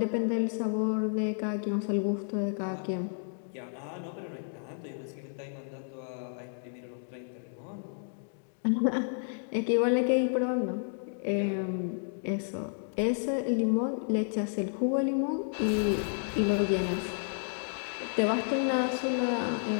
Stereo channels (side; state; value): right; silent; digital silence